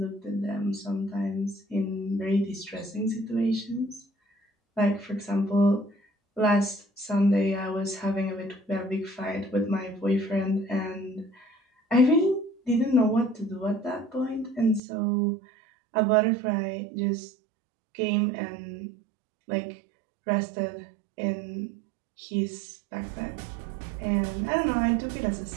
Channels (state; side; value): drops out; left; at 14.8 s